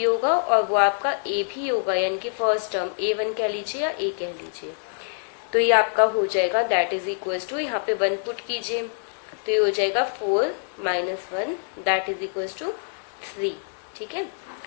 होगा और वो आपका A भी होगा, यानी कि फर्स्ट टर्म A1 कह लीजिए या A कह लीजिए। तो ये आपका हो जाएगा दैट इज इक्वल टू, यहाँ पे 1 पुट कीजिए तो ये हो जाएगा 4 minus 1 that is equal to 3। ठीक है,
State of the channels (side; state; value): right; silent; digital silence